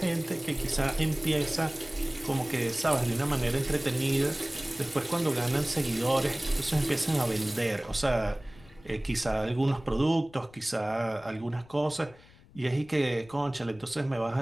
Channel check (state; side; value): noise; left; rumble, 24 dB below the sound